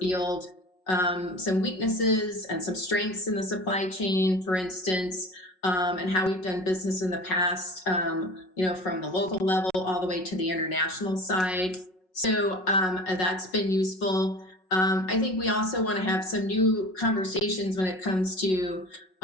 some weaknesses and some strengths in the supply chain, for instance, and how we've done business in the past, from the local level all the way to the international side. So that's been useful. I think we also want to have some new conversations when it comes to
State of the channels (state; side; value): late; right; 5.4 ms